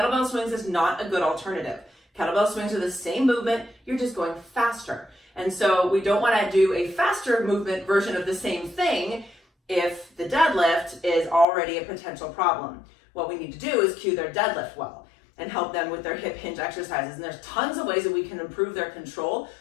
swings is not a good alternative. Kettlebell swings are the same movement, you're just going faster. And so we don't want to do a faster movement version of the same thing if the deadlift is already a potential problem. What we need to do is cue their deadlift well and help them with their hip hinge exercises. And there's tons of ways that we can improve their control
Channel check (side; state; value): right; drops out; at 11.5 s